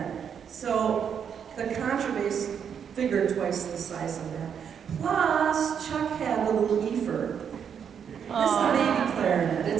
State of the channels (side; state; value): left; quieter; 7.7 dB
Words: So the contrabass figured twice the size of that. Plus, Chuck had the little Efer. It's the baby clarinet.